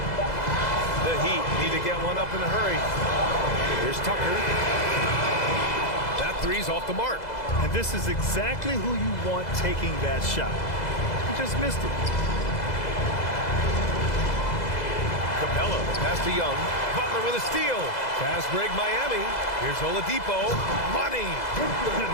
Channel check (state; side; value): late; right; 2.0 ms